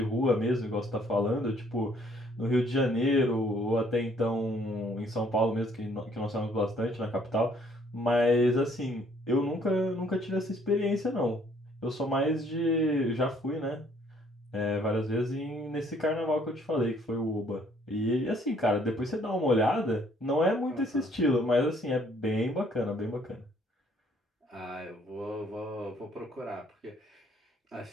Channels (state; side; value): normal; both; correlation 0.63